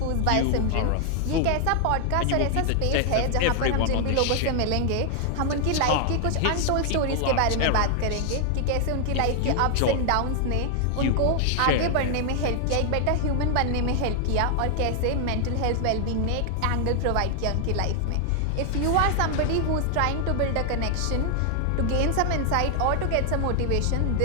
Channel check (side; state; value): both; different; correlation 0.00